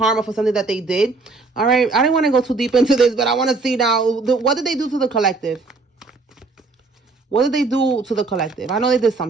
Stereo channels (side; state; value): left; quieter; 3.8 dB